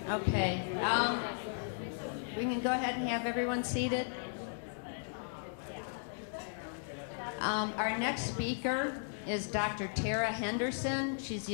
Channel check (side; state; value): right; silent; digital silence